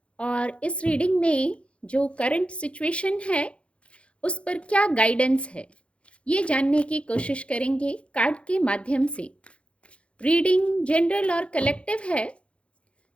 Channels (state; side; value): late; right; 0.060 ms